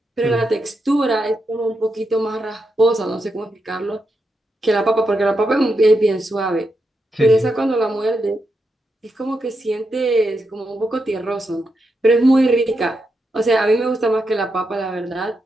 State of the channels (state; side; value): normal; both; correlation 0.84